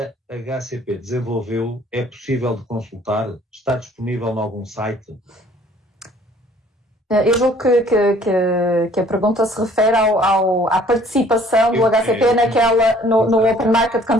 HCP desenvolveu é possível de consultar? Está disponível em algum site? Eu julgo que a pergunta se refere à participação do HCP no Open Market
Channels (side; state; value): both; normal; correlation 0.57